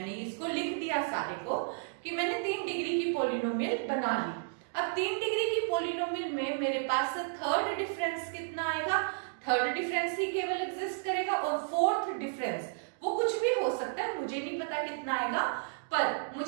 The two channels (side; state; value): left; silent; digital silence